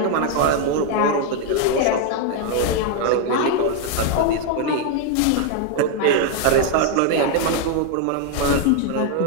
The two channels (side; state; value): both; different; correlation 0.00